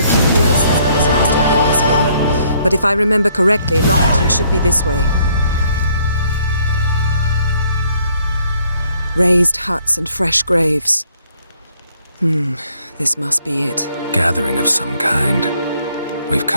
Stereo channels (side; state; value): both; inverted; correlation -0.66